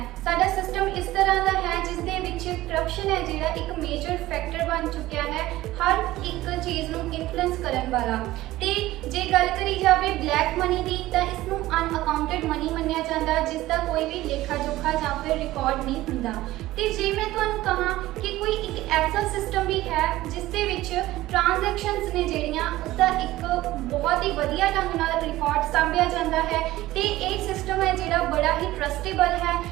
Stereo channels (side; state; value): left; quieter; 16.6 dB